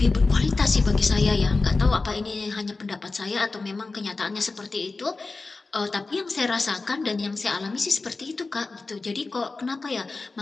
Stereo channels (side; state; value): right; quieter; 3.7 dB